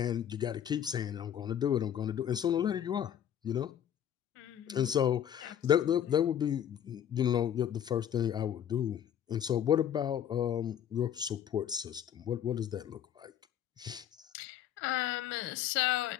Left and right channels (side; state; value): right; quieter; 9.8 dB